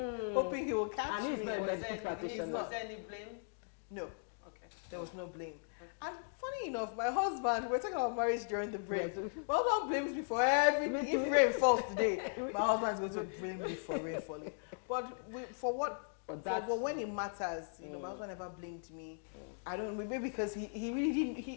he will catch me. And he's not a medical practitioner. Was there any blame? No. Okay. There was no blame. Okay. And funny enough, my husband, we're talking about marriage during the break. Yes. My husband blames me for everything. If rain falls today, my husband's going to blame me for rain falling. But for what? But when it matters, my husband never blamed me. I don't, maybe because he really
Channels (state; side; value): silent; right; digital silence